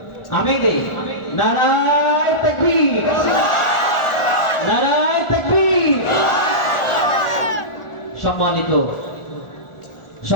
আমি দেই। নারায়ে তাকবীর, নারায়ে তাকবীর।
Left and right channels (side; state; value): right; late; 1.4 ms